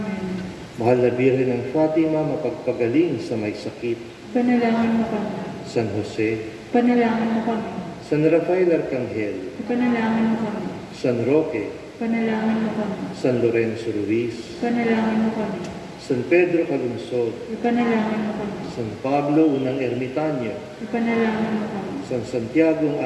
Mahal na Birhen ng Fatima, mapagpagaling sa may sakit. Panalangin mo kami. San Jose, Panalangin mo kami. San Rafael Arcangel, Panalangin mo kami. San Roque, Panalangin mo kami. San Lorenzo Ruiz, Panalangin mo kami. San Pedro Calungsod, Ipanalangin mo kami. San Pablo Unang Ermitanyo, Ipanalangin mo kami. San Santiago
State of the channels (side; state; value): both; identical; correlation 1.00